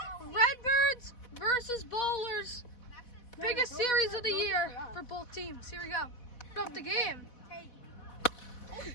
Redbirds versus Bowlers. Biggest series of the year for both teams. Here we go. Put up the game.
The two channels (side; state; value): right; late; 4.1 ms